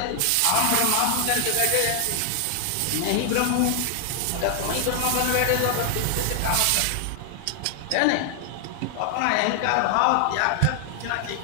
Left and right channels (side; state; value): both; different; correlation 0.00